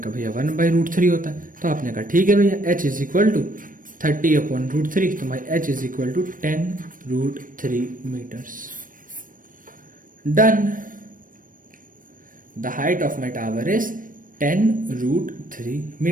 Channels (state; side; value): late; left; 0.40 ms